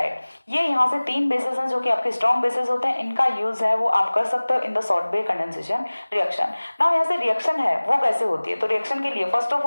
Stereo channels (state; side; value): inverted; both; correlation -1.00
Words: ये यहाँ से तीन बेसिस हैं जो कि आपके स्ट्रॉन्ग बेसिस होते हैं। इनका यूज है वो आप कर सकते हो in the Stobbe condensation reaction. Now यहाँ से रिएक्शन है वो कैसे होती है? तो रिएक्शन के लिए फर्स्ट ऑफ